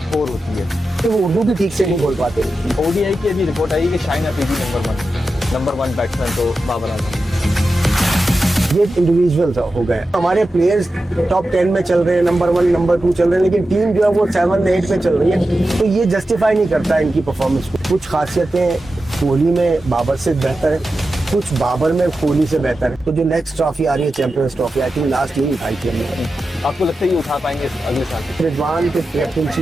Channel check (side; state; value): both; normal; correlation 0.92